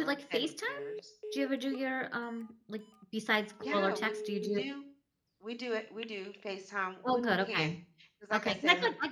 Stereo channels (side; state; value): both; identical; correlation 1.00